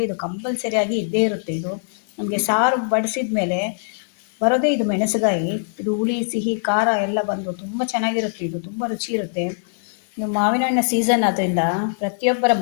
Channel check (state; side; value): silent; right; digital silence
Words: ಇದು ಕಂಪಲ್ಸರಿಯಾಗಿ ಇದ್ದೇ ಇರುತ್ತೆ. ಇದು ನಮಗೆ ಸಾರು ಬಡಿಸಿದ ಮೇಲೆ ಬರೋದೇ ಇದು ಮೆಣಸುಗಾಯಿ. ಇದು ಹುಳಿ, ಸಿಹಿ, ಖಾರ ಎಲ್ಲ ಬಂದು ತುಂಬ ಚೆನ್ನಾಗಿರುತ್ತೆ. ಇದು ತುಂಬ ರುಚಿ ಇರುತ್ತೆ. ನೀವು ಮಾವಿನ ಹಣ್ಣಿನ ಸೀಸನ್ ಆದ್ದರಿಂದ ಪ್ರತಿಯೊಬ್ಬರ